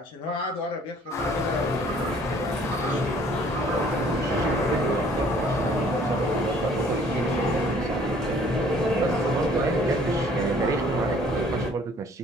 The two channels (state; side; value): normal; both; correlation 0.57